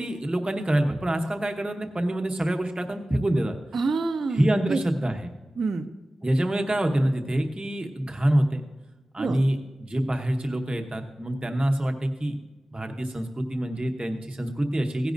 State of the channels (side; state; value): both; normal; correlation 0.97